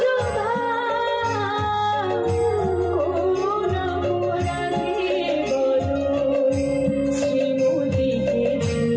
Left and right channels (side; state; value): both; identical; correlation 1.00